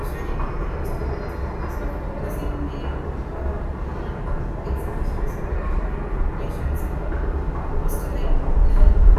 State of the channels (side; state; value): both; identical; correlation 1.00